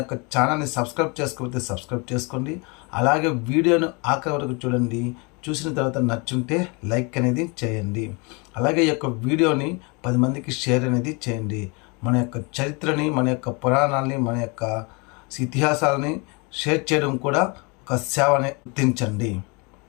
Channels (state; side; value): quieter; right; 30.3 dB